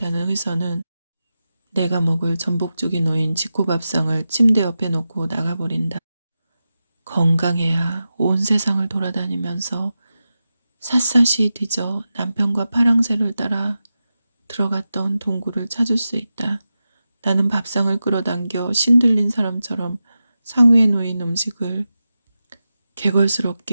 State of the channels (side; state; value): both; inverted; correlation -0.92